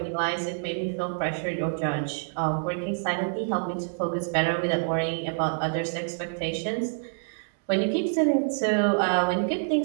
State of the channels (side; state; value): left; silent; digital silence